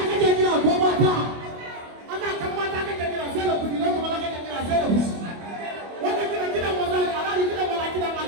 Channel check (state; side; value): late; left; 25 ms